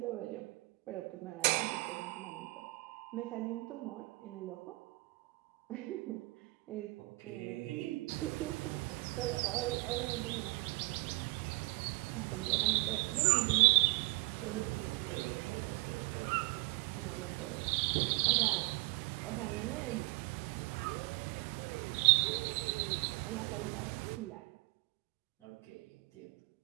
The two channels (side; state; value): left; quieter; 24.5 dB